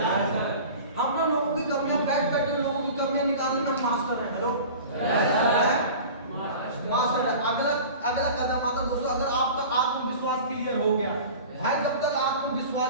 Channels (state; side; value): inverted; both; correlation -0.38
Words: हम ना लोगों की कमियां बैठ लोगों की कमियां निकालने में मास्टर हैं। हेलो मास्टर है। अगला कदम आता दोस्तों, अगर आपका आत्मविश्वास क्लियर हो गया भाई, जब तक